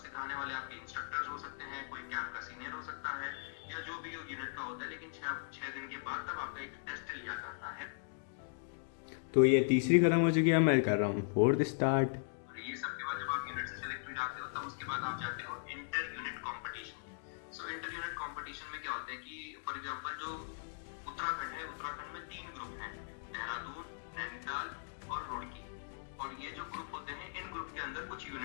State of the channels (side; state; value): right; silent; digital silence